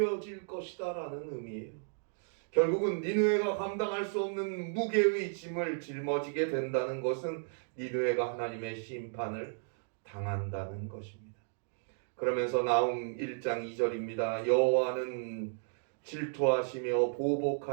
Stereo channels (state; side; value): silent; left; digital silence